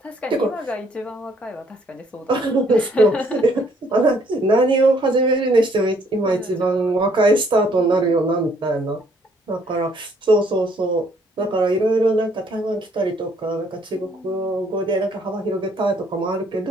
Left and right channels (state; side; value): normal; both; correlation 0.65